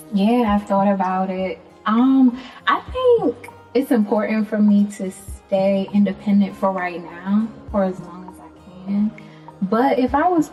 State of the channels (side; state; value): both; identical; correlation 1.00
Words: Yeah, I've thought about it. I think it's important for me to stay independent for right now, for as long as I can. But if I was